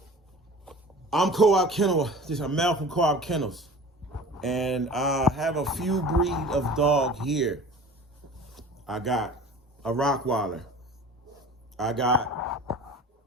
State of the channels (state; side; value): normal; both; correlation 0.40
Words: I'm Co-op Kennel. This is Mel from Co-op Kennels. And I have a few breed of dog here. I got a Rottweiler. I got